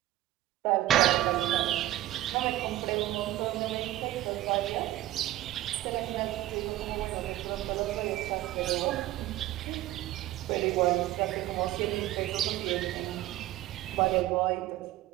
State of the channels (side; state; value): left; quieter; 15.1 dB